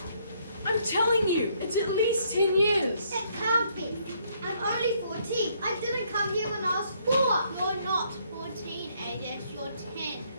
I'm telling you, it's at least 10 years. It can't be. I'm only 14. I didn't come here when I was 4. You're not 14, Adis. You're 10.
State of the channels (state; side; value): inverted; both; correlation -0.69